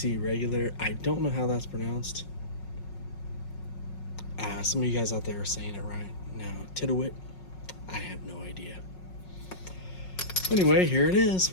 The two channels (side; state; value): right; late; 5.4 ms